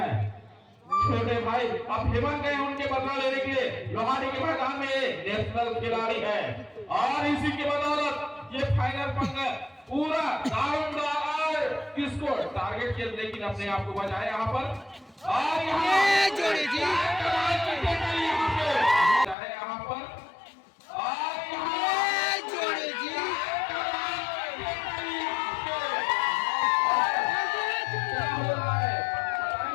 छोटे भाई अब हेमंत गए उनके बदला लेने के लिए लोहाड़ी के मैदान में नेशनल खिलाड़ी है और इसी के बदौलत ये फाइनल पंगा पूरा दारोमदार किसको टारगेट किया, लेकिन अपने आप को बचाया यहाँ पर और यहाँ पर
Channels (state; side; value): drops out; right; at 19.4 s